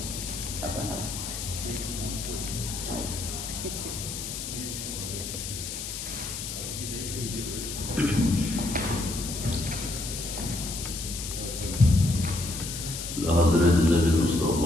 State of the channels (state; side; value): noise; left; hiss, 6 dB below the sound